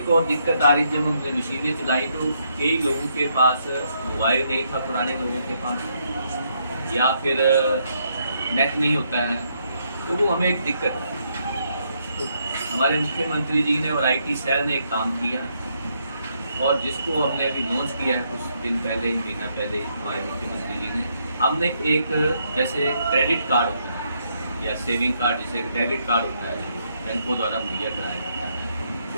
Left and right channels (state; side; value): inverted; both; correlation -0.75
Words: और दिक्कत आ रही, जब हमने मशीनें चलाई तो कई लोगों के पास मोबाइल नहीं था, पुराने लोगों के पास, या फिर नेट नहीं होता है, तो वो हमें एक दिक्कत है। तो हमारे मुख्यमंत्री जी ने और IT सेल ने एक काम किया और जिसको हमने अभी लॉन्च किया है कुछ दिन पहले, महीना पहले हमारे मुख्यमंत्री जी ने, हमने एक जैसे क्रेडिट कार्ड होता है या सेविंग कार्ड, जैसे डेबिट कार्ड होता है जो बैंकों द्वारा मुहैया कराया जाता है,